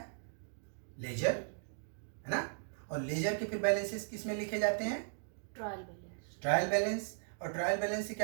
लेजर, है ना। और लेजर के फिर बैलेंसेस किस में लिखे जाते हैं? Trial balance. ट्रायल बैलेंस, और ट्रायल बैलेंस से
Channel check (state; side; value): silent; left; digital silence